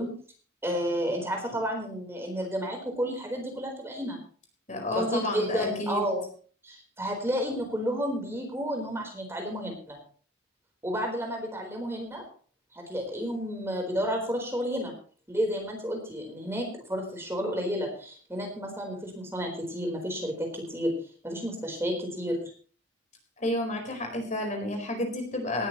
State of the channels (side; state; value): both; normal; correlation 0.52